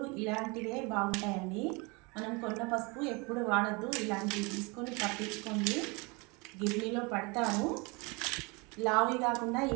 ఇలాంటివే బాగుంటాయండి. మనం కొన్న పసుపు ఎప్పుడు వాడద్దు, ఇలాంటివి తీసుకొని పట్టించుకోండి. గిన్నెలో పడతాను, లావి కాకుండా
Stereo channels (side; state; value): left; quieter; 28.3 dB